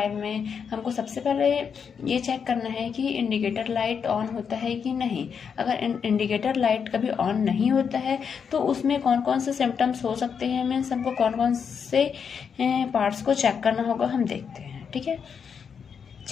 में हमको सबसे पहले ये चेक करना है कि इंडिकेटर लाइट ऑन होता है कि नहीं। अगर इंडिकेटर लाइट कभी ऑन नहीं होता है तो उसमें कौन कौन से सिम्टम्स हो सकते हैं, मीन्स हमको कौन कौन से पार्ट्स को चेक करना होगा, हम देखते हैं। ठीक है,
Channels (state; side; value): quieter; right; 6.7 dB